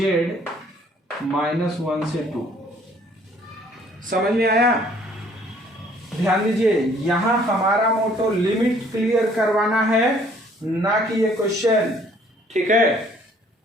-1 से 2। समझ में आया। ध्यान दीजिए, यहां हमारा मोटो लिमिट क्लियर करवाना है, ना कि ये क्वेश्चन, ठीक है।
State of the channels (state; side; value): normal; both; correlation 0.59